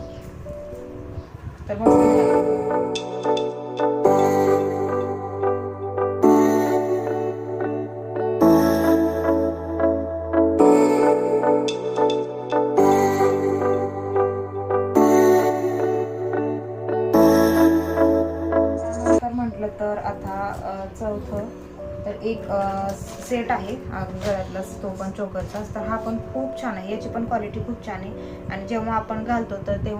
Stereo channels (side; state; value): both; identical; correlation 1.00